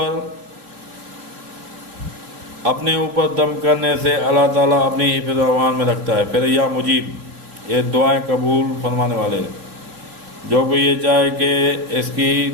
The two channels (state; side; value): late; left; 3.7 ms